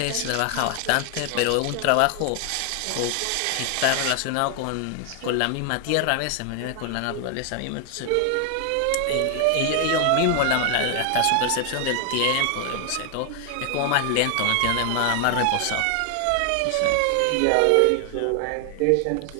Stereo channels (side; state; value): both; different; correlation 0.00